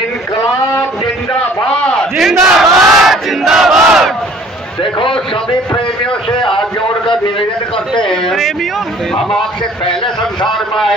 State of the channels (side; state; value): both; normal; correlation 0.54